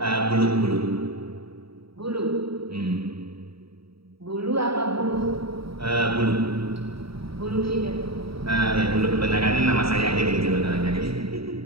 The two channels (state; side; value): late; left; 0.75 ms